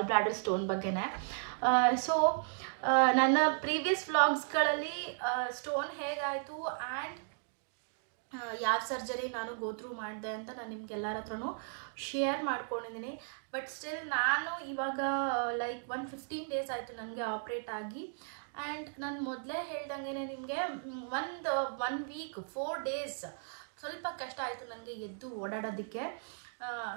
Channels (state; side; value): silent; left; digital silence